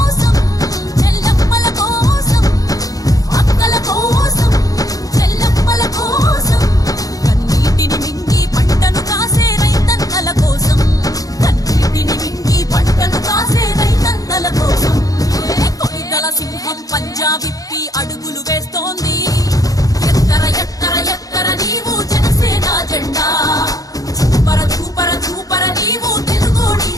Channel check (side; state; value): right; late; 0.17 ms